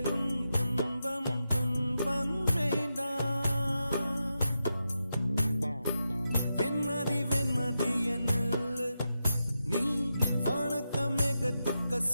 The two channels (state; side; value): inverted; both; correlation -0.88